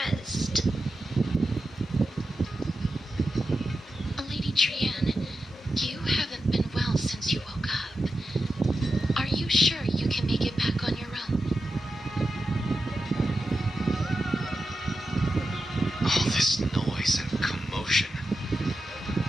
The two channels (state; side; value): normal; both; correlation 0.91